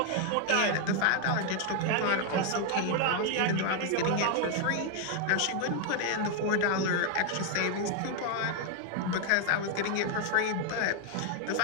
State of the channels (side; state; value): both; different; correlation 0.00